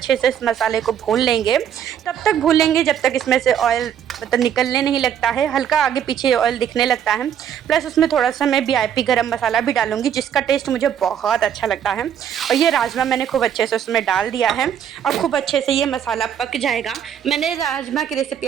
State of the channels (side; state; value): left; quieter; 9.2 dB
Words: से इस मसाले को भून लेंगे। तब तक भून जब तक इसमें से ऑयल मतलब निकलने नहीं लगता है, हल्का आगे पीछे ऑयल दिखने लगता है। प्लस उसमें थोड़ा सा मैं VIP गरम मसाला भी डालूंगी, जिसका टेस्ट मुझे बहुत अच्छा लगता है। और ये राजमा मैंने खूब अच्छे से उसमें डाल दिया है और खूब अच्छे से ये मसाला पक जाएगा। मैंने राजमा की रेसिपी